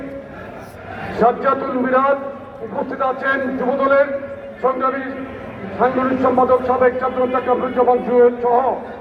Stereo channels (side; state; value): both; identical; correlation 1.00